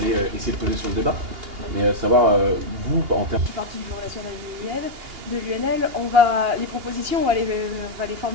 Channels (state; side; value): late; left; 2.8 ms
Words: essayer de peser sur le débat. Mais savoir, vous, en termes... Je suis partie du Bureau national de l'UNL, les propositions, on va les